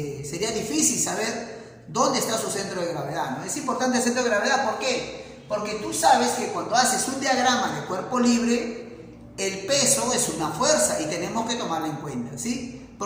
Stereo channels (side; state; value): both; identical; correlation 1.00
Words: sería difícil saber dónde está su centro de gravedad, ¿no? Es importante el centro de gravedad, ¿por qué? Porque tú sabes que cuando haces un diagrama de cuerpo libre, el peso es una fuerza y tenemos que tomarla en cuenta, ¿sí?